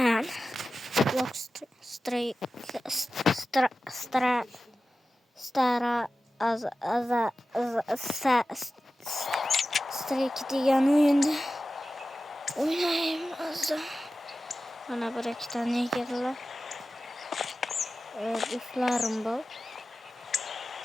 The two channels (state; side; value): normal; both; correlation 0.94